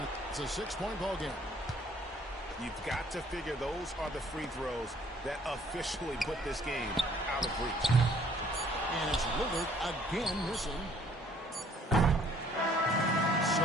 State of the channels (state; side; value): normal; both; correlation 0.60